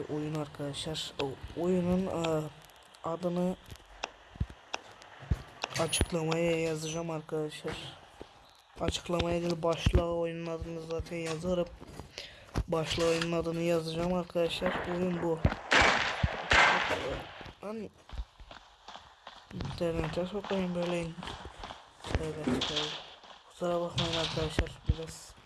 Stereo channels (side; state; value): both; identical; correlation 1.00